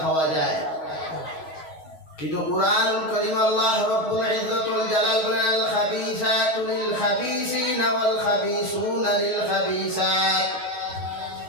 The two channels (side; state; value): right; late; 6.4 ms